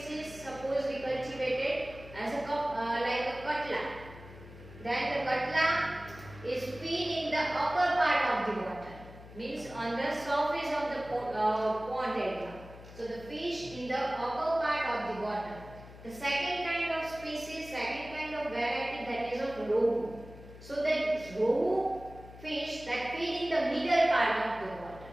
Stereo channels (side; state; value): left; noise; hum, 17 dB below the sound